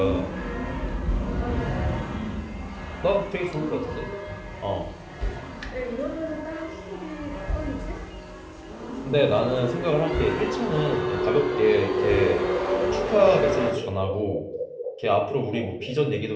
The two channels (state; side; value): identical; both; correlation 1.00